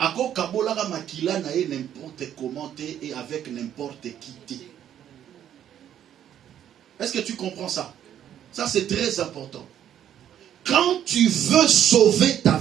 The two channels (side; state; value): left; quieter; 10.3 dB